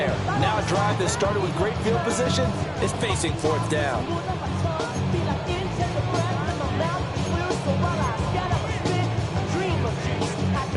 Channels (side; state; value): both; identical; correlation 1.00